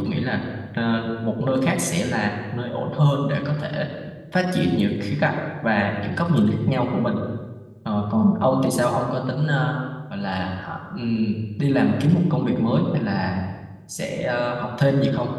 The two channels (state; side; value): identical; both; correlation 1.00